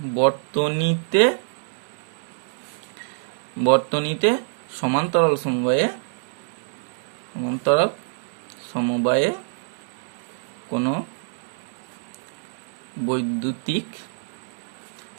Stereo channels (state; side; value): silent; left; digital silence